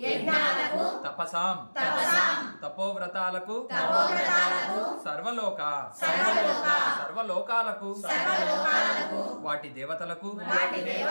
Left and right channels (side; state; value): both; inverted; correlation -1.00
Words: తపసాం తపోవ్రతాలకు సర్వలోకాలకు వాటి దేవతలకు